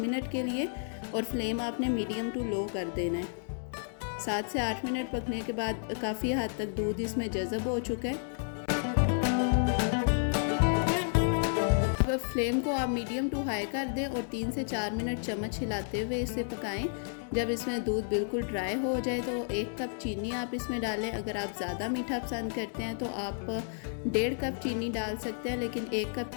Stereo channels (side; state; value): right; silent; digital silence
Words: मिनट के लिए और फ्लेम आपने मीडियम टू लो कर देना है। 7 से 8 मिनट पकने के बाद काफ़ी हद तक दूध इसमें जज़ब हो चुका है। अब फ्लेम को आप मीडियम टू हाई कर दें और 3 से 4 मिनट चम्मच हिलाते हुए इसे पकाएं। जब इसमें दूध बिल्कुल ड्राई हो जाए तो 1 कप चीनी आप इसमें डालें। अगर आप ज़्यादा मीठा पसंद करते हैं तो आप 1.5 कप चीनी डाल सकते हैं, लेकिन 1 कप